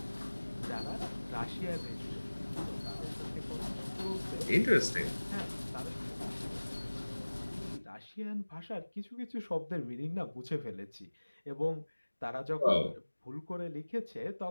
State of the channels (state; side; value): inverted; both; correlation -1.00